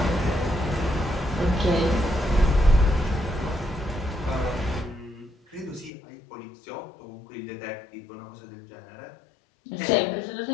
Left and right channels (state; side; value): drops out; right; at 5.9 s